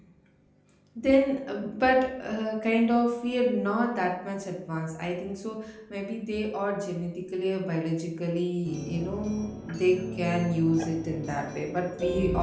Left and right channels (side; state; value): both; identical; correlation 1.00